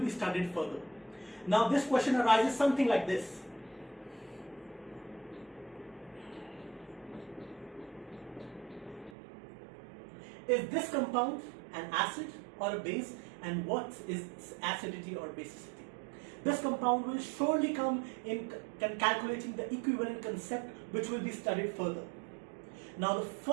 studied further. Now, this question arises something like this. Is this compound an acid or a base, and what is its acidity or basicity? This compound will surely come in calculating the equivalent concept, which will be studied further. Now, the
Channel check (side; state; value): left; drops out; at 9.2 s